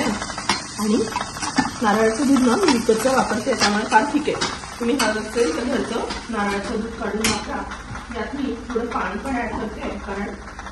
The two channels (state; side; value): identical; both; correlation 1.00